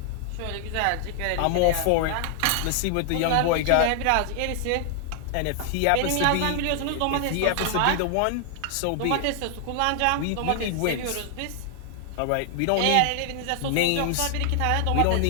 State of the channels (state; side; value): different; both; correlation 0.00